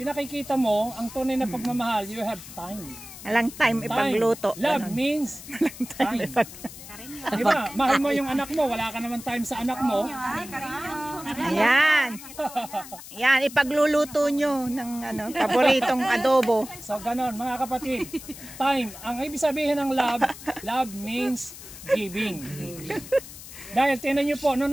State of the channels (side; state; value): left; noise; hiss, 15 dB below the sound